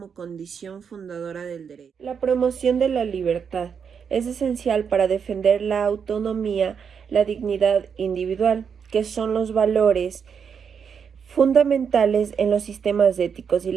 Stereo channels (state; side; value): quieter; left; 6.8 dB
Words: condición fundadora del derecho. La promoción de la libertad es esencial para defender la autonomía, la dignidad individual, que son los valores fundamentales en los sistemas éticos y